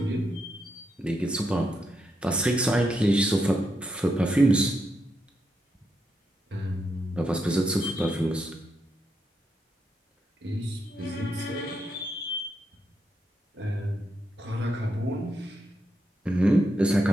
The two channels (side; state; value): both; normal; correlation 0.82